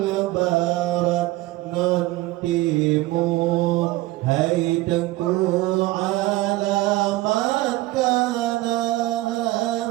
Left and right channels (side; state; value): left; quieter; 18.2 dB